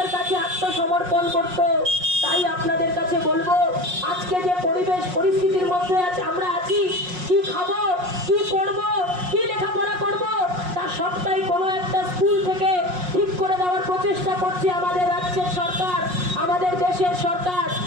কাছে আত্মসমর্পণ করত। তাই আপনাদের কাছে বলবো, আজকে যে পরিস্থিতির মধ্যে আমরা আছি, কি খাবো, কি পড়বো, কি লেখাপড়া করবো, তা সবটাই কোনো একটা স্কুল থেকে ঠিক করে দেওয়ার প্রচেষ্টা করছে আমাদের রাজ্যের সরকার, আমাদের দেশের সরকার।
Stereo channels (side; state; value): left; late; 5.5 ms